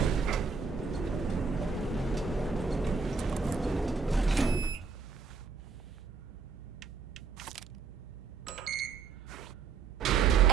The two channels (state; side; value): quieter; left; 5.2 dB